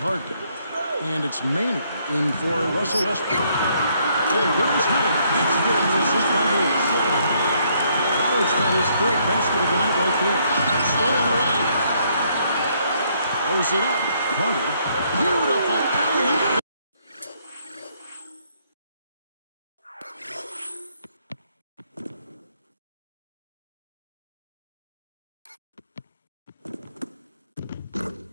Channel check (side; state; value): both; inverted; correlation -0.69